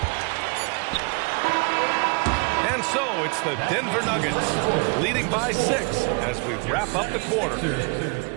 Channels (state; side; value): quieter; left; 32.8 dB